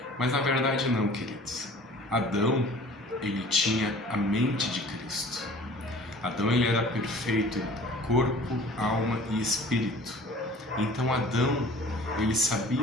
mas na verdade não, queridos. Adão, ele tinha a mente de Cristo. Adão, ele era perfeito em corpo, alma e espírito. Então Adão, ele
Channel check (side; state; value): both; normal; correlation 0.47